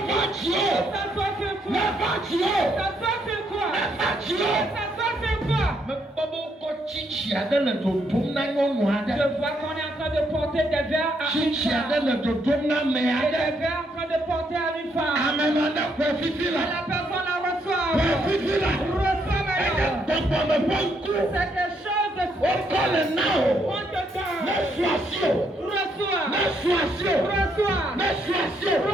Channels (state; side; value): normal; both; correlation 0.74